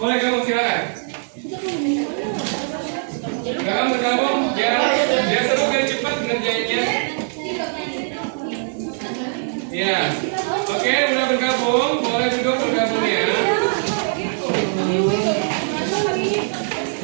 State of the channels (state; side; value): silent; left; digital silence